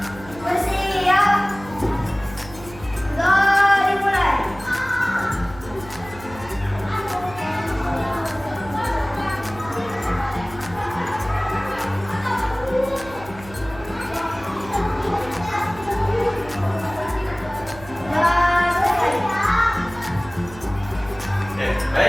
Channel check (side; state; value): right; noise; hum, 17 dB below the sound